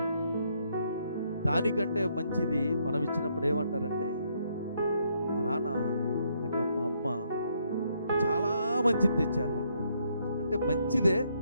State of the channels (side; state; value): both; inverted; correlation -0.73